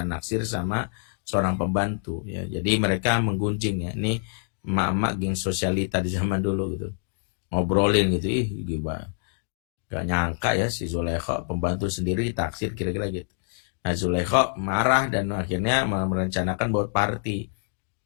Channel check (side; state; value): right; silent; digital silence